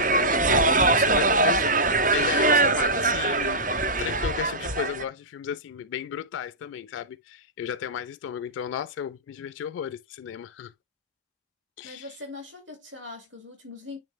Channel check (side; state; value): both; normal; correlation -0.16